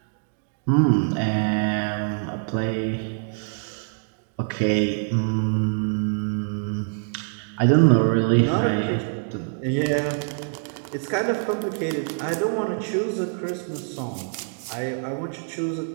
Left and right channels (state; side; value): silent; left; digital silence